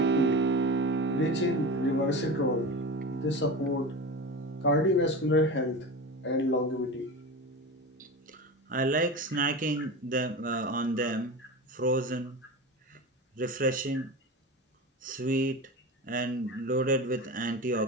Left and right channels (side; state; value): both; normal; correlation 0.27